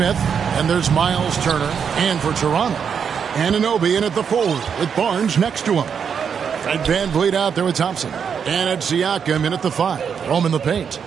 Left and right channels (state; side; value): quieter; left; 7.1 dB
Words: And there's Miles Turner. And for Toronto, Anunoby in at the forward with Barnes next to him. Fred VanVleet out there with Thompson. And it's Siakam in at the 5. Rome in the paint.